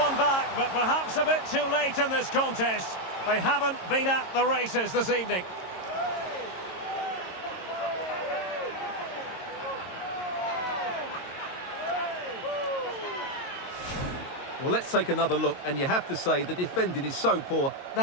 back, but perhaps a bit too late in this contest. They haven't been at the races this evening. Well, let's take another look, and you have to say the defending is so poor.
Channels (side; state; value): right; late; 22 ms